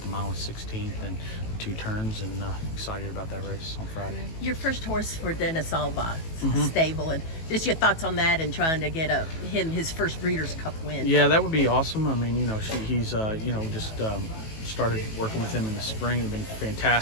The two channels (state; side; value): late; right; 18 ms